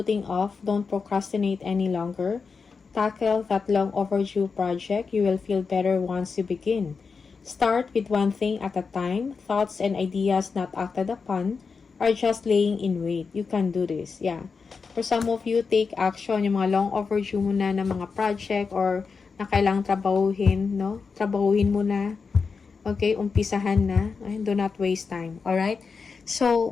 off, don't procrastinate any longer. Tackle that long overdue project. You will feel better once you begin. Start with one thing at a time. Thoughts and ideas not acted upon are just laying in wait. You can do this. Yeah. For some of you, take action. Yung mga long overdue mo na ng mga project or na kailangang trabahuhin, no? Trabahuhin mo na. Okay? Umpisahan na. Do not waste time. Alright?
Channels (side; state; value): right; quieter; 5.1 dB